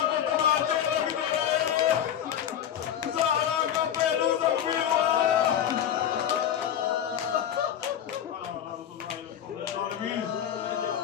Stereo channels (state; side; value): quieter; right; 9.8 dB